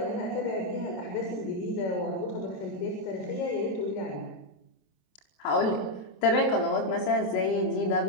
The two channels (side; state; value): right; late; 26 ms